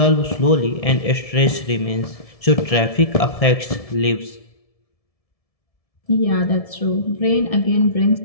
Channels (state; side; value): late; right; 1.7 ms